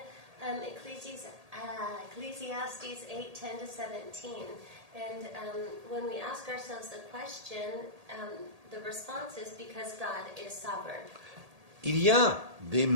Ecclesiastes 8:10-17. And when we ask ourselves the question, the response is because God is sovereign. Il y a des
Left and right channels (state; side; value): late; left; 1.8 ms